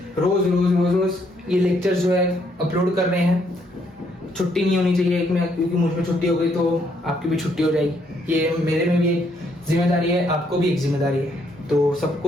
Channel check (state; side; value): normal; both; correlation 0.71